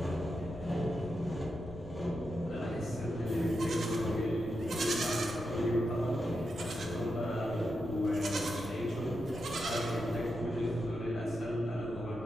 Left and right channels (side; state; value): left; noise; rumble, 14 dB below the sound